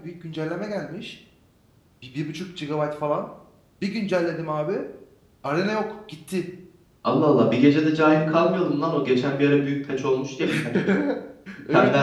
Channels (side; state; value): both; identical; correlation 1.00